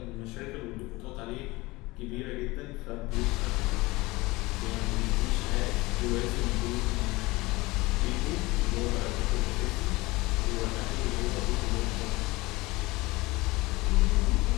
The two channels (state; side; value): quieter; right; 21.7 dB